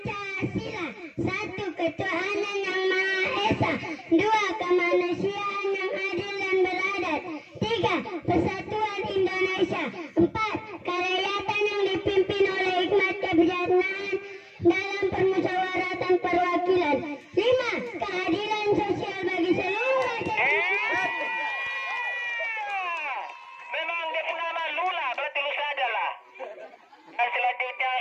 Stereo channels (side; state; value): both; identical; correlation 1.00